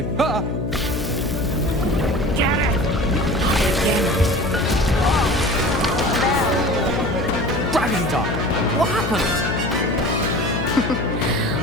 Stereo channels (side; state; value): left; noise; hum, 3 dB below the sound